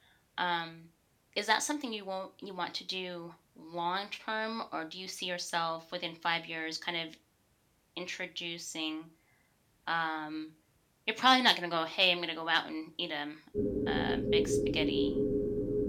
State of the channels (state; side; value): identical; both; correlation 1.00